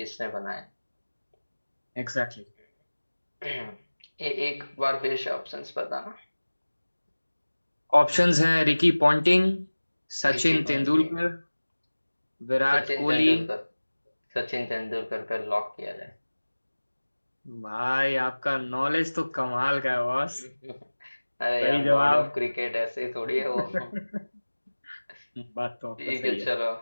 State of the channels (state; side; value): inverted; both; correlation -1.00